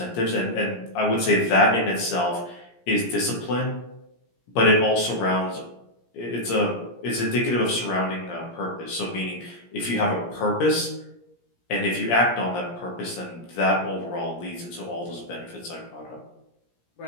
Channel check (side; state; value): right; late; 17 ms